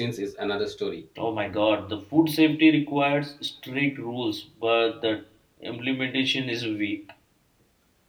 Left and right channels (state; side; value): identical; both; correlation 1.00